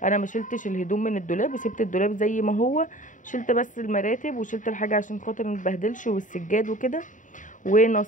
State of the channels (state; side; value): late; right; 0.37 ms